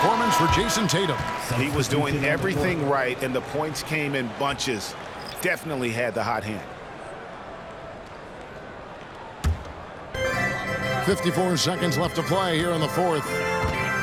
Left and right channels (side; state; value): both; identical; correlation 1.00